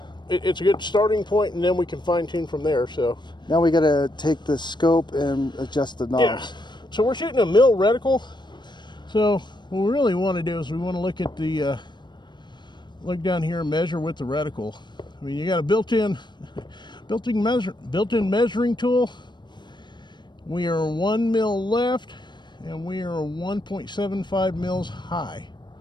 it's a good starting point, and then we can fine tune from there. So now we got to take the scope and adjust the knob. yeah, so we're shooting a mil reticle. So what we really want to do is we want to look at the look down here and measure with the reticle. I mean, you got a built-in measuring tool. We are 1 mil left, and we are 1.75 mils high.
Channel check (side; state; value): right; late; 0.22 ms